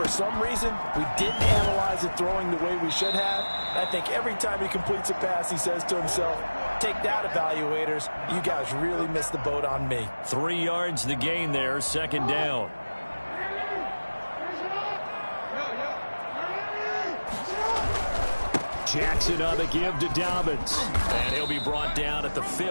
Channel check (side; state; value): both; inverted; correlation -1.00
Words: some reason, we didn't analyze it throwing the way we should have. And I think every time he completes a pass, he says to himself, take that, evaluators. You guys really missed the boat on me. 3 yards the gain there, second down. Jackson on the give to Dobbins. And he'll be brought down at the